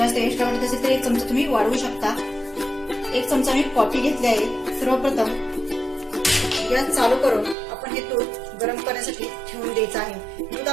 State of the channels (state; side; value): drops out; left; at 7.6 s